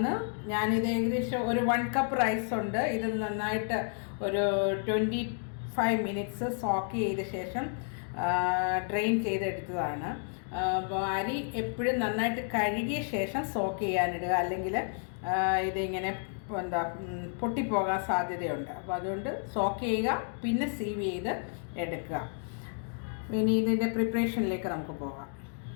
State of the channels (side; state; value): right; silent; 57 dB below the other